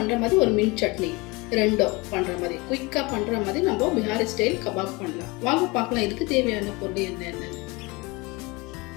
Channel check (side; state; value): right; quieter; 24.9 dB